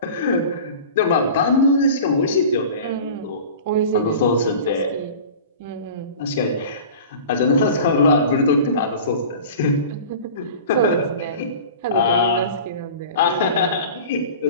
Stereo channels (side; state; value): both; inverted; correlation -0.38